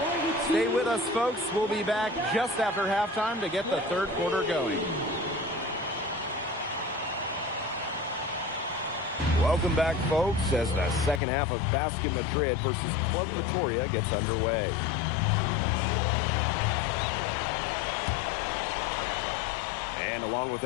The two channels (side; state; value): right; drops out; at 11.2 s